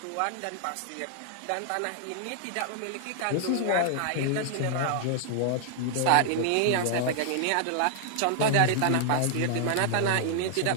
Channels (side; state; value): both; different; correlation -0.01